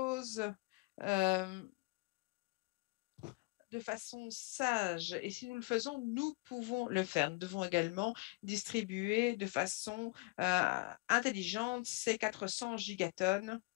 de façon sage. Et si nous le faisons, nous pouvons le faire. Nous devons également distribuer de façon intelligente ces 400 gigatonnes,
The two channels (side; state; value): right; quieter; 26.7 dB